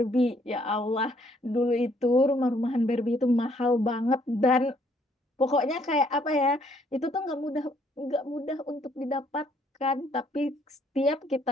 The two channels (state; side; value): normal; both; correlation 0.66